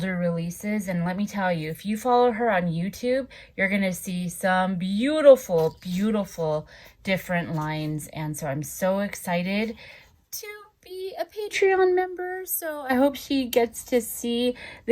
releases. And let me tell you, if you follow her on YouTube, you're gonna see some beautiful, beautiful different lines. And so I'm so excited to be a Patreon member, so I hope she gets to see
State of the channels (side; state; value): both; identical; correlation 1.00